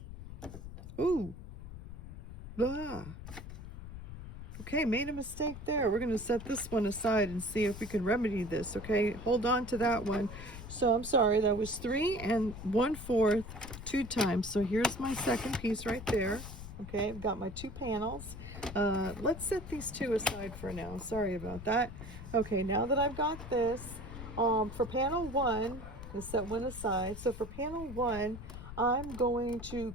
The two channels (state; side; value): noise; left; rumble, 11 dB below the sound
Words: Ooh. Ah. Okay, made a mistake there. We're going to set this one aside and see if we can remedy this. Okay, hold on to that one. So I'm sorry, that was 3 1/4 2 times. So here's my second piece right there. Okay, I've got my 2 panels. Let's set these 2 aside for now. Sorry about that. Okay, now that I've got this, for panel 1, let's set one aside. So for panel 1, I'm going to